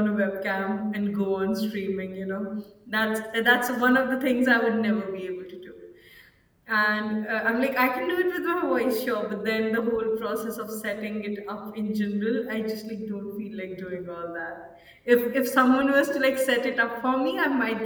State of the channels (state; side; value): identical; both; correlation 1.00